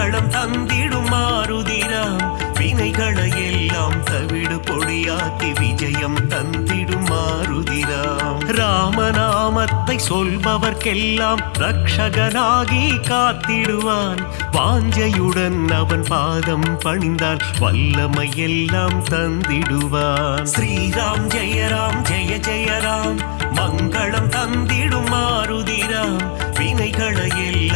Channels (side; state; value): right; silent; digital silence